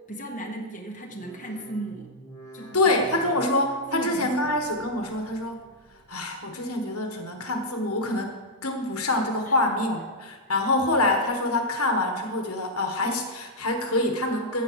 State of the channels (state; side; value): normal; both; correlation -0.05